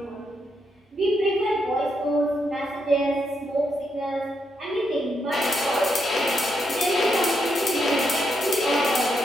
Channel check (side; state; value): both; normal; correlation 0.80